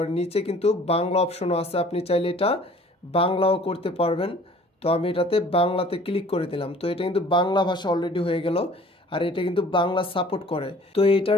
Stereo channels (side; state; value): both; normal; correlation 0.51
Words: নিচে কিন্তু বাংলা অপশনও আছে, আপনি চাইলে এটা বাংলাও করতে পারবেন। তো আমি এটাতে বাংলাতে ক্লিক করে দিলাম। তো এটা কিন্তু বাংলা ভাষা অলরেডি হয়ে গেল, আর এটা কিন্তু বাংলা সাপোর্ট করে। তো